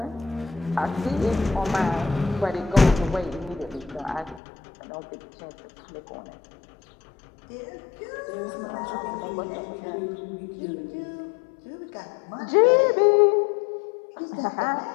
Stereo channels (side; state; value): right; drops out; at 4.4 s